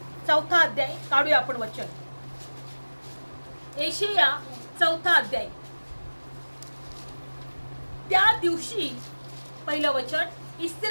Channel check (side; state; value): both; inverted; correlation -1.00